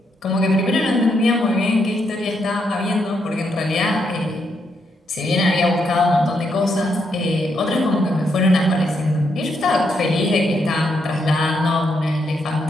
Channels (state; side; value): normal; both; correlation 0.78